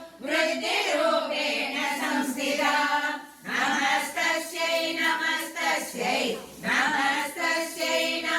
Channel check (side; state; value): both; identical; correlation 1.00